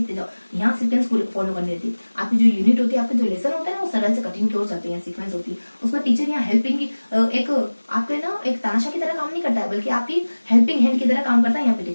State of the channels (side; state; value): both; inverted; correlation -1.00